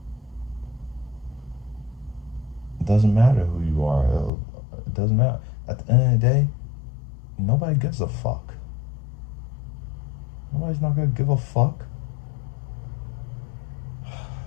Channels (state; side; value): drops out; right; at 4.3 s